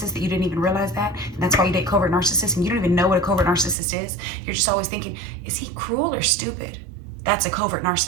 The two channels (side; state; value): left; drops out; at 3.8 s